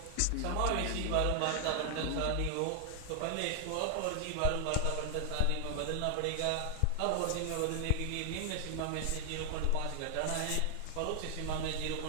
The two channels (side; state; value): both; different; correlation 0.00